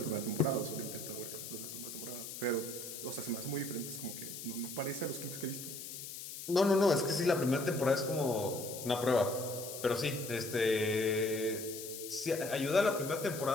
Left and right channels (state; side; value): noise; left; hiss, 9 dB below the sound